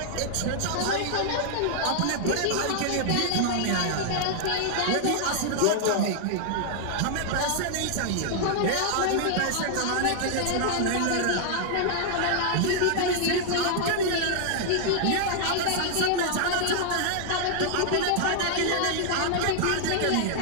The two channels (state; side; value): different; both; correlation -0.01